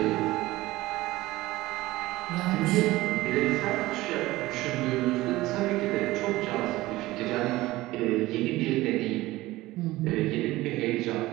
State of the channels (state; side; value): quieter; left; 18.2 dB